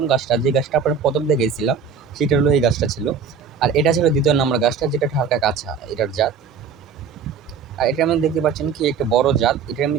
গাছটা, যে গাছটা আপনার ১ম দেখেছিলাম, সেটা হলো এই গাছটা ছিল। আর এটা ছিল ২য় নাম্বার গাছটা, যেটা হালকা কাঁচা, এটার জাত। আর এটার মধ্যে দেখতে পাচ্ছেন কি একটা বড় জাত, এটার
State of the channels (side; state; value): left; quieter; 6.2 dB